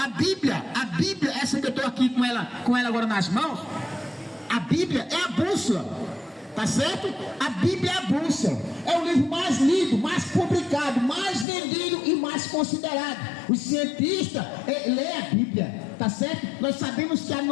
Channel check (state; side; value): drops out; right; at 11.5 s